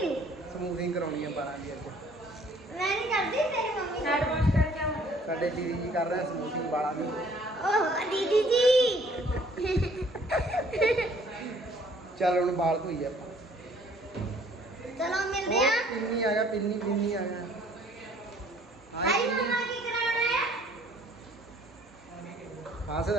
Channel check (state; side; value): normal; both; correlation 0.58